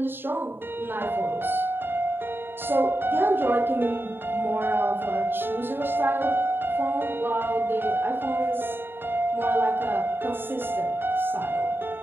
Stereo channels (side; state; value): left; late; 0.10 ms